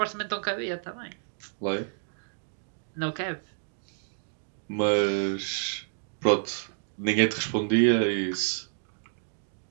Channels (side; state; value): left; silent; digital silence